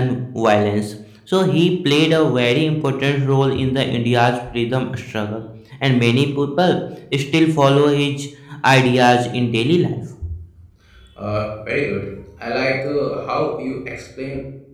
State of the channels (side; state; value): both; identical; correlation 1.00